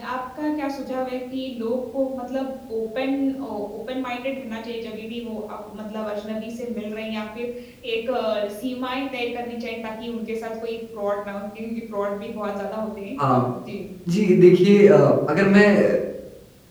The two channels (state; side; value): identical; both; correlation 1.00